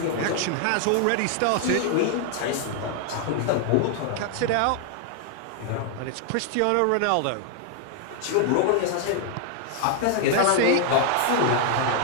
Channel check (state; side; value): different; both; correlation 0.00